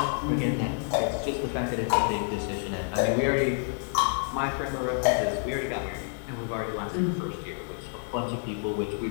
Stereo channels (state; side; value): silent; right; 59 dB below the other